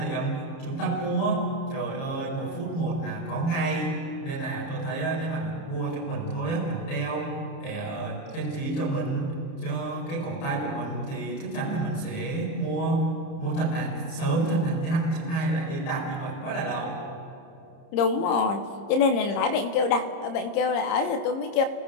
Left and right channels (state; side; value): late; right; 30 ms